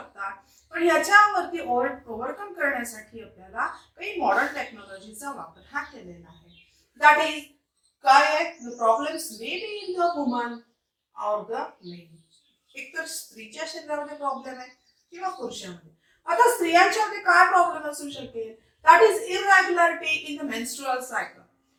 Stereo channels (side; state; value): both; identical; correlation 1.00